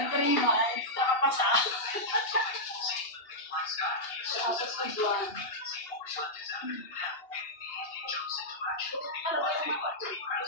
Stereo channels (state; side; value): late; right; 2.8 ms